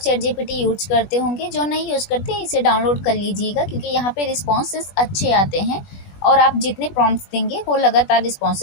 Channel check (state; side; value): late; right; 20 ms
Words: जीपीटी यूज करते होंगे, जो नहीं यूज करते इसे डाउनलोड कर लीजिएगा, क्योंकि यहाँ पे रिस्पॉन्सेस अच्छे आते हैं और आप जितने प्रॉम्प्ट्स देंगे वो लगातार